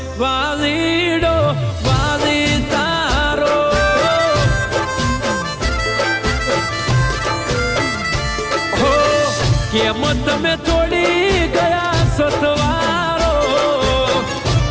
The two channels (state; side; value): identical; both; correlation 1.00